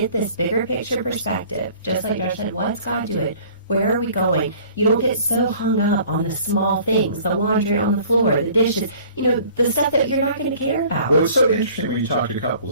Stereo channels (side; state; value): both; inverted; correlation -0.50